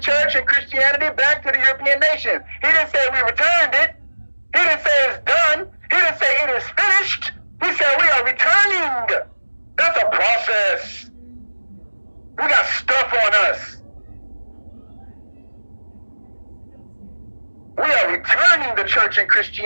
and Christianity back to the European nations. He didn't say we returned it. He didn't say it's done. He didn't say it is finished. He said we are returning. That's a process. We got stuff on us. We are returning the church and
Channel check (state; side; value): inverted; both; correlation -1.00